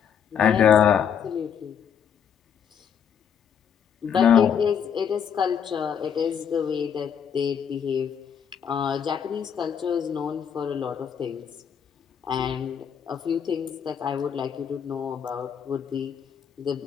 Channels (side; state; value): right; quieter; 7.9 dB